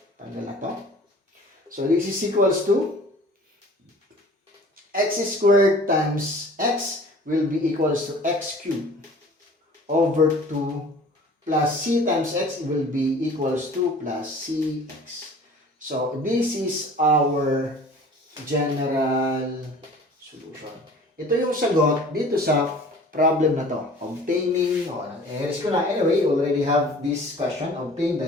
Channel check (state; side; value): normal; both; correlation 0.46